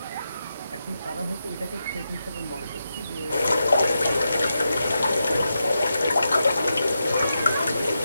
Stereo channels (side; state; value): both; inverted; correlation -0.87